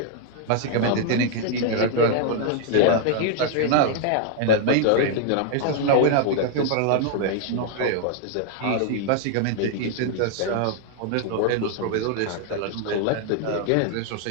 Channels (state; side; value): different; both; correlation 0.00